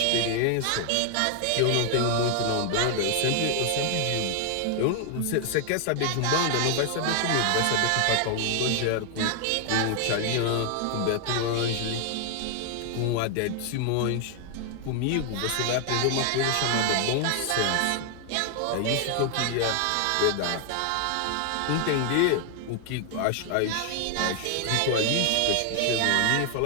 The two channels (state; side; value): different; both; correlation 0.00